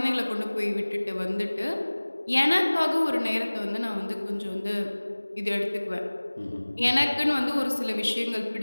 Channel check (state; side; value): inverted; both; correlation -1.00